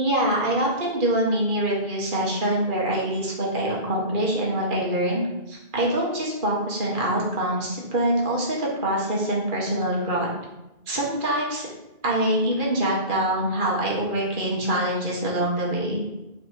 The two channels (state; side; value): late; left; 2.4 ms